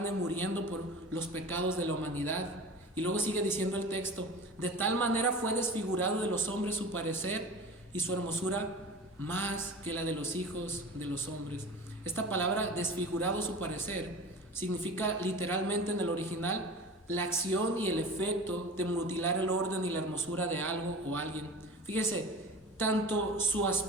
muriendo por los pecados de la humanidad. Y luego sigue diciendo el texto, de tal manera fue desfigurado de los hombres su parecer, y su hermosura más que la de los hijos de los hombres. Esta palabra desfigurado su parecer significa literalmente en el original la acción y el efecto de mutilar el orden y la hermosura de algo o alguien. Fíjese, tanto su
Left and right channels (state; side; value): normal; both; correlation 0.35